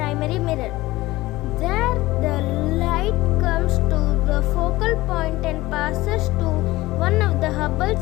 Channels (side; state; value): right; quieter; 18.6 dB